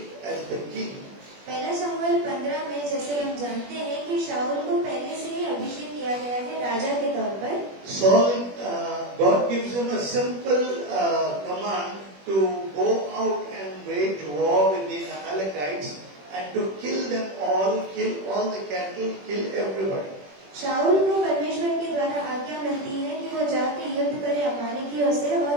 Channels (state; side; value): late; left; 21 ms